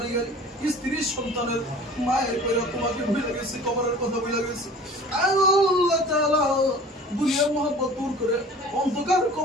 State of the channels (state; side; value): normal; both; correlation 0.44